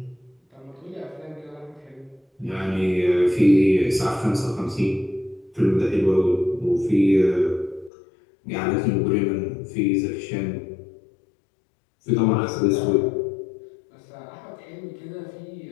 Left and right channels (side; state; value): right; drops out; at 7.9 s